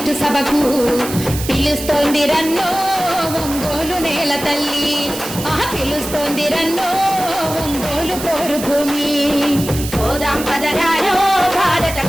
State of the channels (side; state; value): right; noise; hiss, 9 dB below the sound